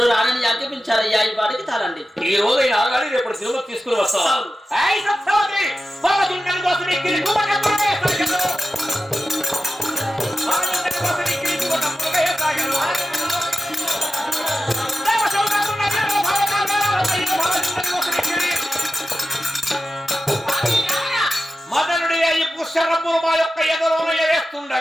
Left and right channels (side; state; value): both; normal; correlation 0.93